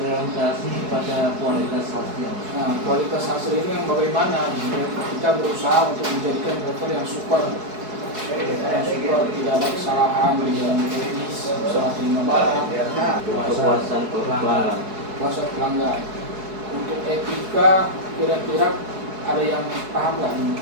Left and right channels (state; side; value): late; left; 4.7 ms